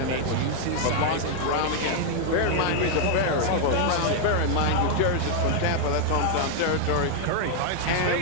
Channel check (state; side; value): different; both; correlation 0.00